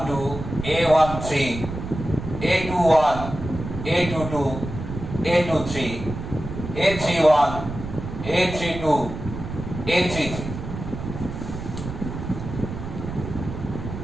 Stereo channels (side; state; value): right; noise; rumble, 8 dB below the sound